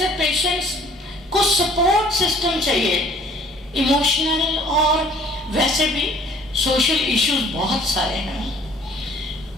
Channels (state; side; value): normal; both; correlation 0.54